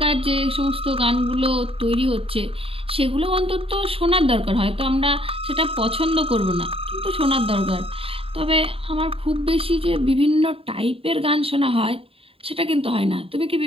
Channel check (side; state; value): left; late; 0.27 ms